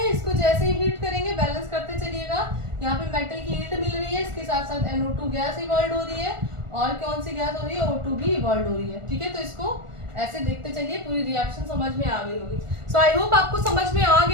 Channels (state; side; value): late; left; 1.4 ms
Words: इसको जैसे ही हीट करेंगे बैलेंस करते चलिएगा, यहाँ पे मेटल की हीट मिल रही है, इसके साथ साथ NO2 गैस इवॉल्व हो रही है, और कौन सी गैस हो रही है, O2 भी इवॉल्व हो रही है, ठीक है। तो इसको ऐसे देखते चलिए, पूरी रिएक्शन समझ में आ गई होगी। सो आई होप आपको समझ में आ